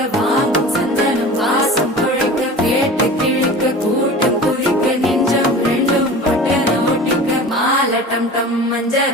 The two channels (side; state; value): both; normal; correlation 0.37